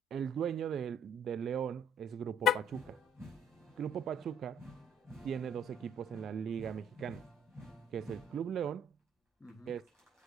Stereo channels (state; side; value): normal; both; correlation 0.62